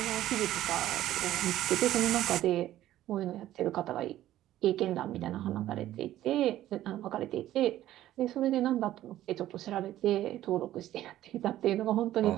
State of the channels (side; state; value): left; quieter; 13.6 dB